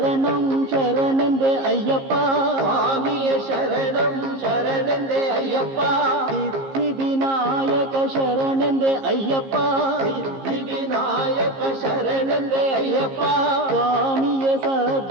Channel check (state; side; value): late; left; 15 ms